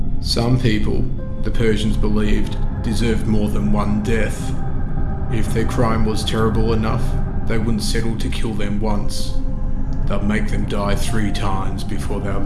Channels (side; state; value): both; identical; correlation 1.00